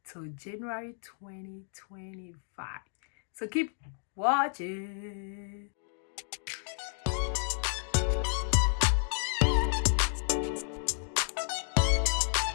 till January 2025. So keep watching.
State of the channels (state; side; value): silent; right; digital silence